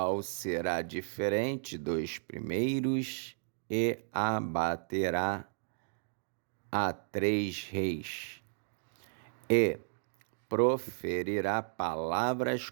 será diferente dos primeiros, e abaterá a 3 reis, e proferirá palavras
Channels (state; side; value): silent; left; digital silence